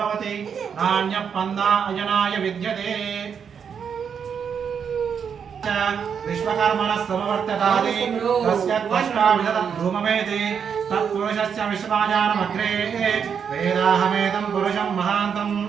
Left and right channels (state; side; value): quieter; left; 7.1 dB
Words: भवति नान्यः पन्ना अजनाय विद्यते विश्वकर्मणः समवर्ततादि तस्य त्वष्टाविधतं धूममेति तत्पुरुषस्य विश्वाजानमग्रे वेदाहमेतं पुरुषं महान्तम्